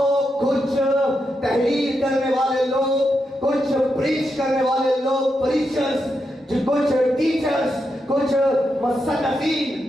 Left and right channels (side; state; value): both; normal; correlation 0.85